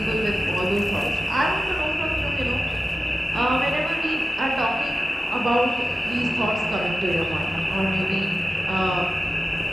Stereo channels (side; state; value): both; normal; correlation 0.94